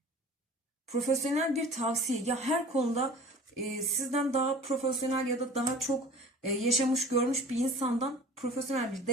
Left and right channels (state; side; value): normal; both; correlation 0.43